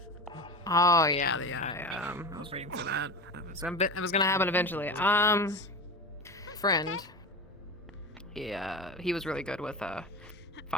Oh yeah, I was waiting for that. It was gonna happen eventually. Friend. He was really good with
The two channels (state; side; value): normal; both; correlation 0.27